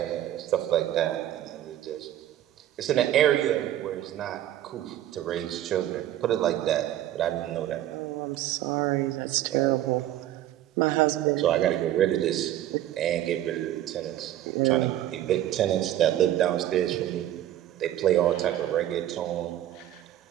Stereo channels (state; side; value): quieter; left; 12.7 dB